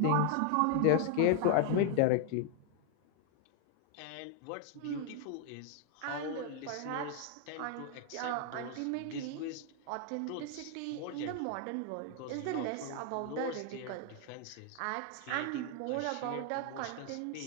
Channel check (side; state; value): both; different; correlation 0.00